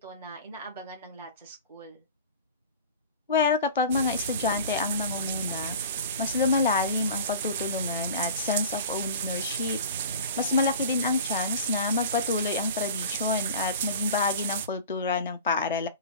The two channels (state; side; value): inverted; both; correlation -0.38